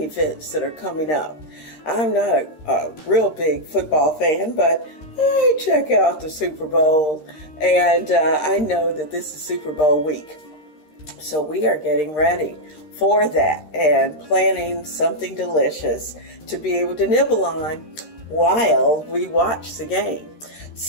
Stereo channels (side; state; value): right; late; 13 ms